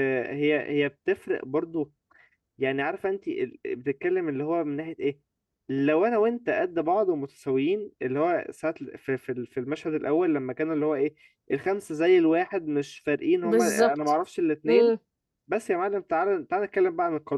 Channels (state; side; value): identical; both; correlation 1.00